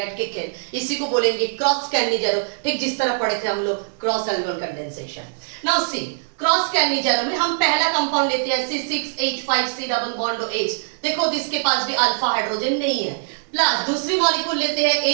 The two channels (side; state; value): left; silent; digital silence